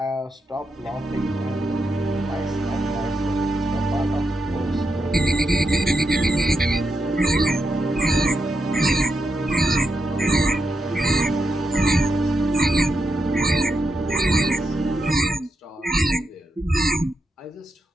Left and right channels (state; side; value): normal; both; correlation 0.85